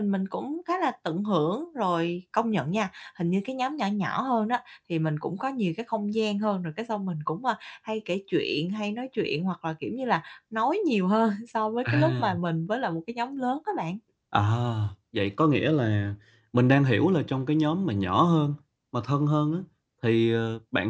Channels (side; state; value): both; identical; correlation 1.00